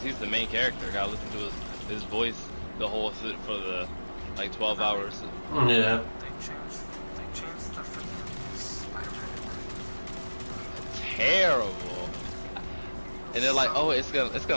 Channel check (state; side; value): inverted; both; correlation -1.00